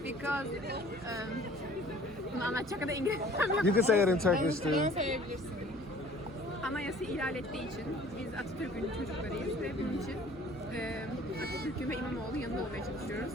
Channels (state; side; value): normal; both; correlation 0.51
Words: Because Bunu anlatacak kadar İngilizcem yok. You can say it in Turkish too. Söyleyebilirsin. Anayasa ihlal ettiği için biz Atatürk'ün çocuklarıyız ve bunun için Atatürk'ün ve İmamoğlu yanında olmaya çalışıyoruz.